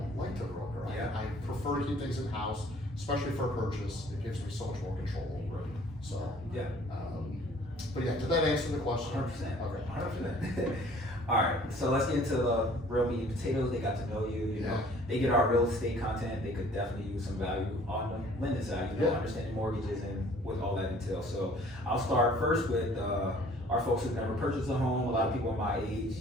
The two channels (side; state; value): both; normal; correlation 0.54